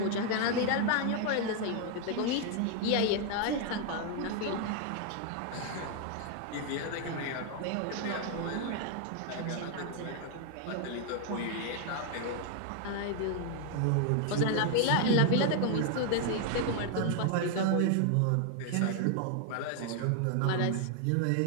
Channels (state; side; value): different; both; correlation 0.00